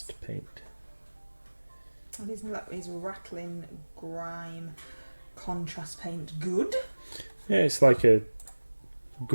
paint. Is rattling grime contrast paint good? Yeah, it's like a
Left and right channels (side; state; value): both; inverted; correlation -1.00